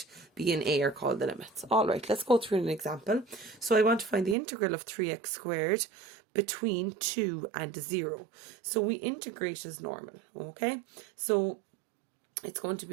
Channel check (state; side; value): drops out; left; at 4.4 s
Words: B and A are called the limits. All right, let's go through an example. So I want to find the integral of 3x squared between 2 and 0. So we integrate as normal, okay? So it's going to